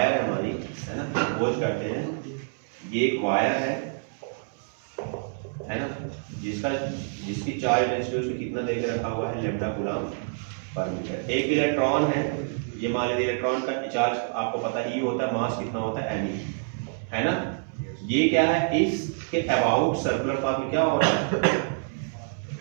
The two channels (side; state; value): left; silent; digital silence